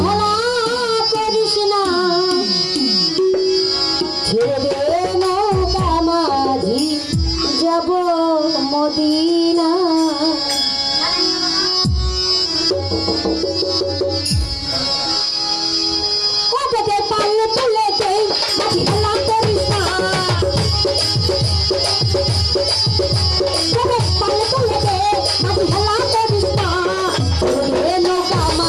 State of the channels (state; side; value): identical; both; correlation 1.00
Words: হেলা করিস না, ছেড়ে দে নৌকা মাঝি যাব মদিনা। কততে পারলে তুলে দে মাঝি হেলা করিস না, কততে পারলে তুলে দে মাঝি হেলা করিস না। ছেড়ে দে নৌকা